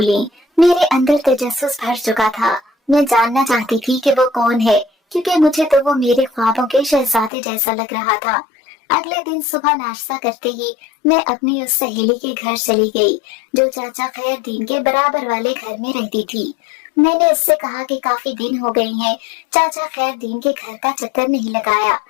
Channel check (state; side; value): drops out; right; at 7.3 s